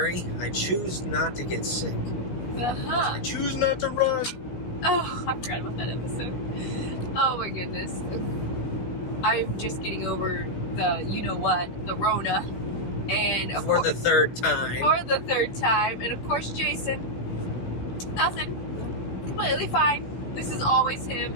I choose not to get sick. I choose not to run. Oh, I forgot about that episode. Oh my goodness. I'm just getting over the, you know what, the Rona. And of For course, the third time. For the third time. And of course, Jason, nothing. Completely fine. This is always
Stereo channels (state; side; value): late; right; 16 ms